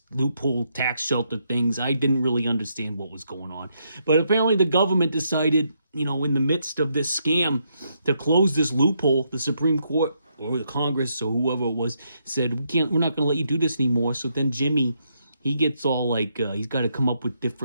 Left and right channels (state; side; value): inverted; both; correlation -0.77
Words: loophole tax shelter things. I didn't really understand what was going on. But apparently the government decided, in the midst of this scam, to close this loophole. The Supreme Court or the Congress or whoever it was said, we're not going to let you do this anymore. So then Jimmy, he gets all like, he's got to come up with